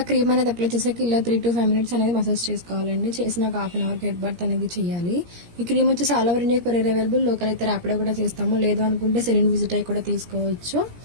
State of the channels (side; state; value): left; late; 17 ms